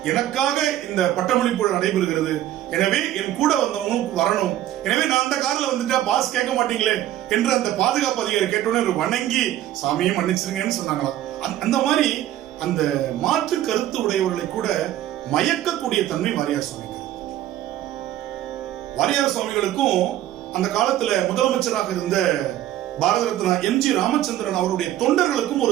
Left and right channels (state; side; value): quieter; left; 13.1 dB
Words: எனக்காக இந்த பட்டமளிப்பு நடைபெறுகிறது, எனவே என் கூட வந்தவனும் வரணும், எனவே நான் அந்த கார்ல வந்துட்டா பாஸ் கேட்க மாட்டீங்களே என்று அந்த பாதுகாப்பு அதிகாரி கேட்டோன்னே வணங்கி சாமியை மன்னிச்சிருங்கன்னு சொன்னாங்களாம். அந்த மாதிரி அந்த மாற்று கருத்து உடையவர்களை கூட மயக்கக்கூடிய தன்மை வாரியார் சுவாமிக்கு. வாரியார் சுவாமிகளுக்கும் அந்த காலத்துல முதலமைச்சராக இருந்த பாரத ரத்னா எம்ஜி ராமச்சந்திரன் அவருடைய தொண்டர்களுக்கும்